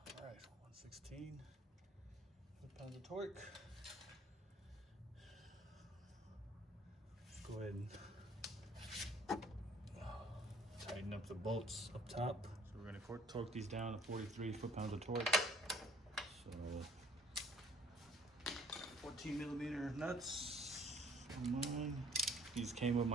All right, 116 foot-pounds of torque. Let's go ahead and tighten up the bolts up top. So we're going to torque these down to 43 foot-pounds of torque. So 14mm nuts on mine. These came with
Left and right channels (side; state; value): both; normal; correlation 0.57